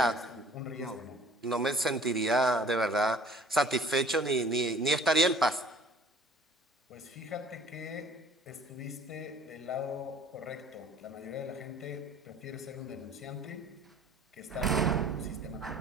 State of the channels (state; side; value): normal; both; correlation 0.52